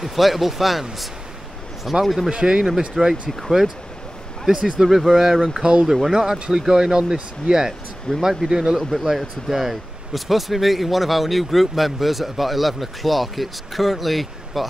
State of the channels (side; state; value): both; normal; correlation 0.97